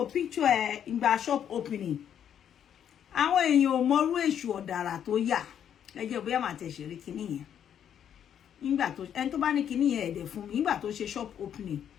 picture ẹ̀ ìgbà shop opening. Àwọn èèyàn ò mọrú èṣù ọ̀dàrà tó yà. Ẹ jẹ́ bóyá màá tẹ̀ ṣeré kinní yẹn. Nígbà tó ẹni tó bá ní kinní yẹn ẹ̀dẹ̀ fún mi nígbà tó ṣe shop opening.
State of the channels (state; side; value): quieter; right; 9.2 dB